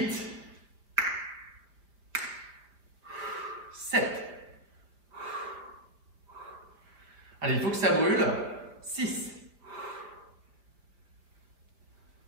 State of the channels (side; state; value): left; late; 4.9 ms